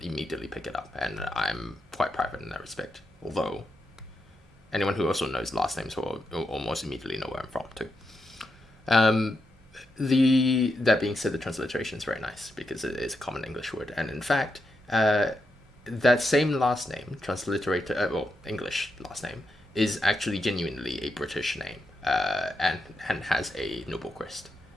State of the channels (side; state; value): both; normal; correlation 0.85